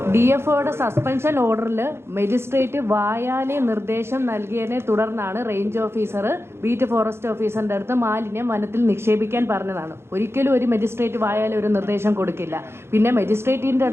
DFOയുടെ സസ്പെൻഷൻ ഓർഡറിൽ മജിസ്ട്രേറ്റ് വായാലെ നിർദ്ദേശം നൽകിയതിനെ തുടർന്നാണ് റേഞ്ച് ഓഫീസർ ബീറ്റ് ഫോറസ്റ്റ് ഓഫീസറിൻ്റെ അടുത്ത് മാലിന്യം വനത്തിൽ നിക്ഷേപിക്കാൻ പറഞ്ഞതാണ്. ഒരിക്കലും ഒരു മജിസ്ട്രേറ്റ് വായാലെ ഒരു നിർദ്ദേശം കൊടുക്കില്ല. പിന്നെ മജിസ്ട്രേറ്റിൻ്റെ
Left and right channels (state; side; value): late; left; 0.12 ms